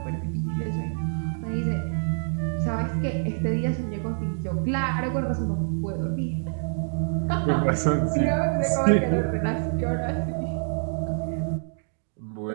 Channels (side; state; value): left; silent; digital silence